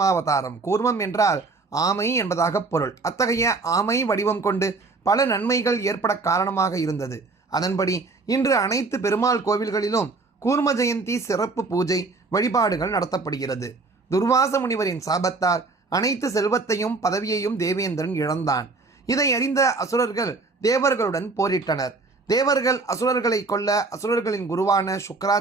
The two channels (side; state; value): left; quieter; 3.8 dB